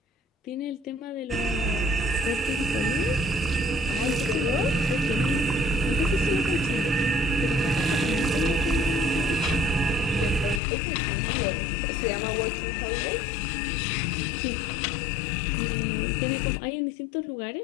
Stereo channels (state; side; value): drops out; right; at 10.6 s